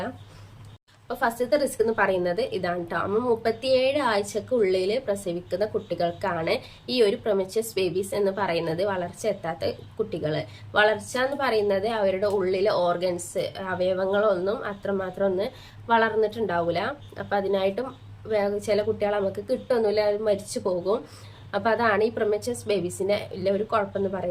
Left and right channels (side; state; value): both; identical; correlation 1.00